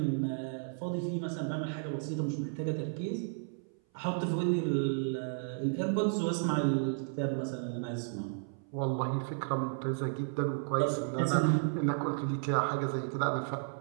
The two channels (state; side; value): silent; left; 56 dB below the other